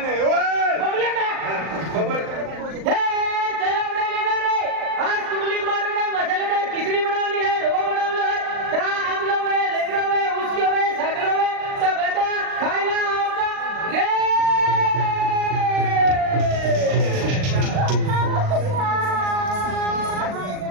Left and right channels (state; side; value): late; left; 39 ms